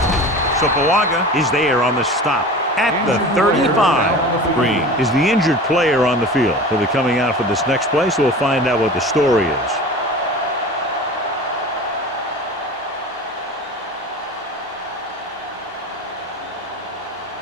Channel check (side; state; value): both; normal; correlation 0.36